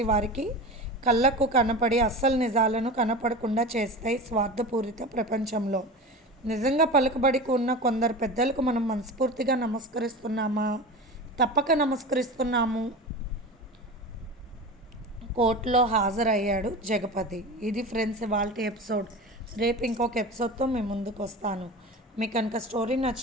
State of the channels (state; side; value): normal; both; correlation 0.30